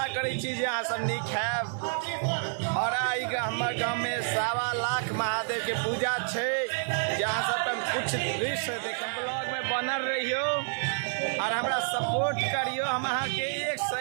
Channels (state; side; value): silent; left; 59 dB below the other